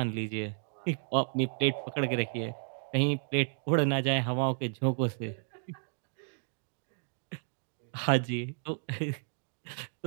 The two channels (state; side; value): silent; left; digital silence